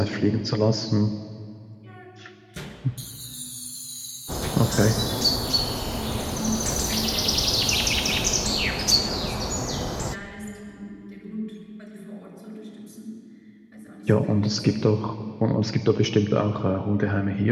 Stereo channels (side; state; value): both; identical; correlation 1.00